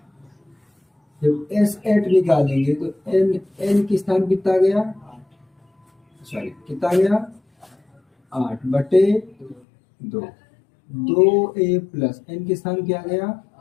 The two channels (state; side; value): drops out; right; at 9.6 s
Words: जब S8 निकालेंगे तो n की स्थान कितना गया? सॉरी कितना गया? 8/2। 2a प्लस n के स्थान क्या गया?